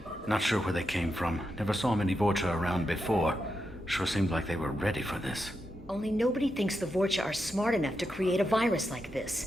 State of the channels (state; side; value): normal; both; correlation 0.86